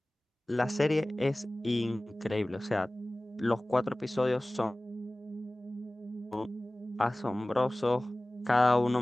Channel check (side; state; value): both; normal; correlation 0.98